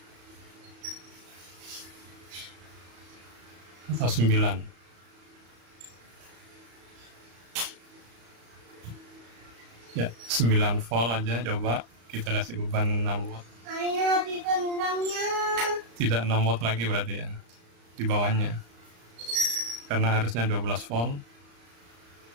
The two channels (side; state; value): left; late; 34 ms